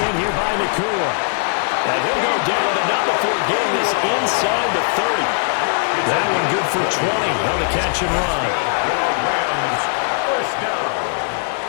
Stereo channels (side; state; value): right; silent; 64 dB below the other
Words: here by Nakua. And he'll go down enough before getting this inside the 30. That one good for 20 on the catch and run. First down.